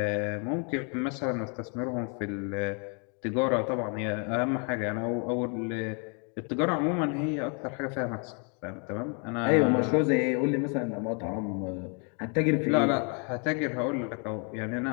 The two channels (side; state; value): right; quieter; 38.1 dB